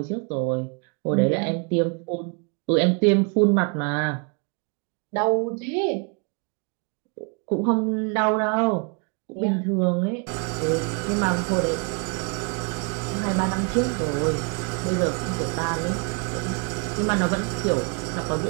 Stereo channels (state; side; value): quieter; left; 35.8 dB